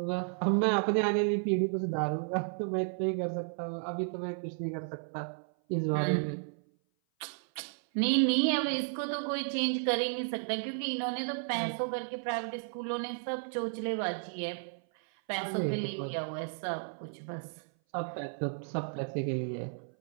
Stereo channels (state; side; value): silent; left; 56 dB below the other